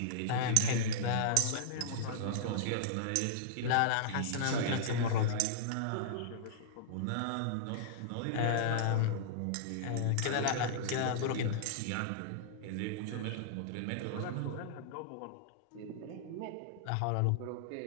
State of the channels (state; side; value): different; both; correlation -0.02